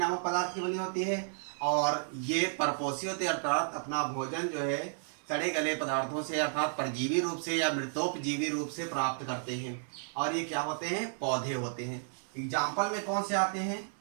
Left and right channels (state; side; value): silent; left; 56 dB below the other